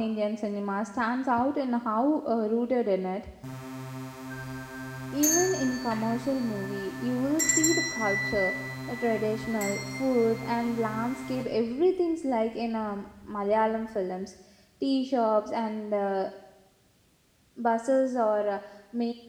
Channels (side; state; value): both; identical; correlation 1.00